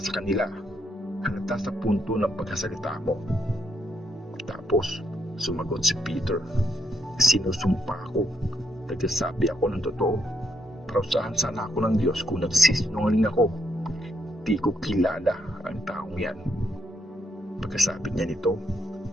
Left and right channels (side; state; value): both; normal; correlation 0.76